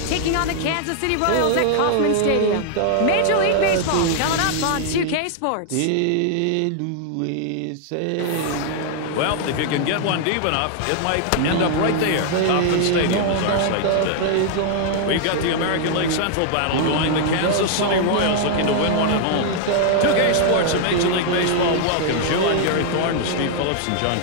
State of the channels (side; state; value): both; different; correlation -0.01